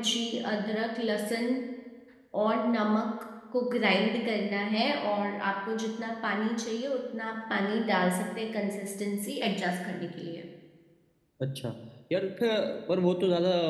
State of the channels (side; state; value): both; identical; correlation 1.00